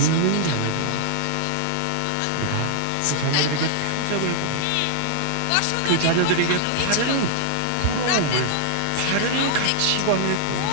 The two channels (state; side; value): different; both; correlation -0.01